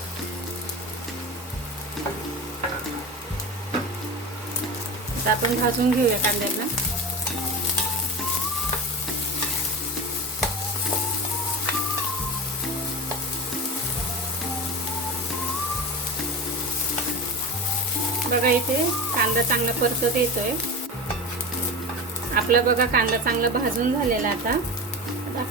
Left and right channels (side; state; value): both; normal; correlation 0.26